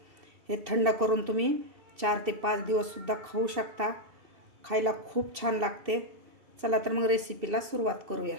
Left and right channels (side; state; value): left; late; 2.7 ms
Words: हे थंड करून तुम्ही 4 ते 5 दिवससुद्धा खाऊ शकता. खायला खूप छान लागते. चला तर मग रेसिपीला सुरुवात करूया.